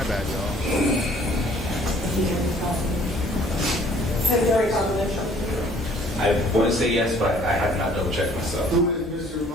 bad, y'all. I want to say yes, but I have not double checked myself. Who is Mr.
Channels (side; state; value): both; normal; correlation 0.57